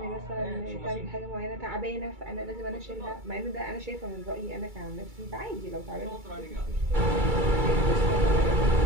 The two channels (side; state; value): left; late; 2.3 ms